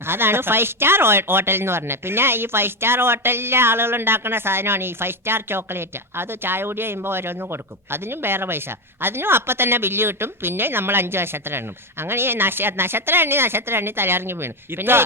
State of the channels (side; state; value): both; normal; correlation 0.12